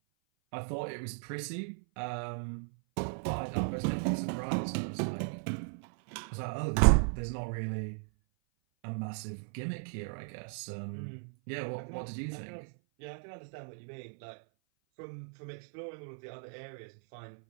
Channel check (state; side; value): silent; left; 54 dB below the other